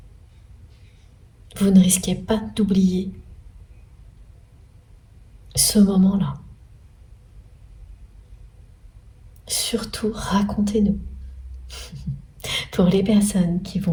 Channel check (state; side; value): identical; both; correlation 1.00